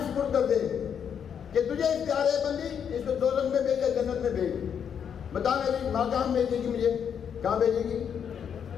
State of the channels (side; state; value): right; quieter; 7.9 dB